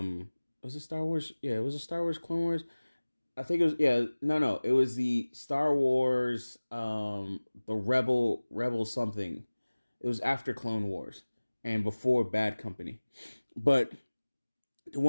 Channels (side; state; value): both; inverted; correlation -1.00